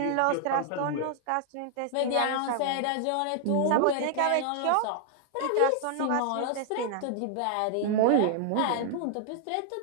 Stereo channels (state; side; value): different; both; correlation 0.00